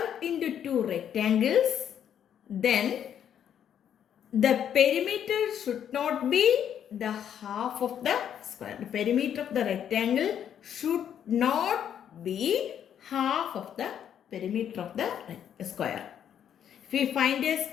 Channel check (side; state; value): right; quieter; 9.3 dB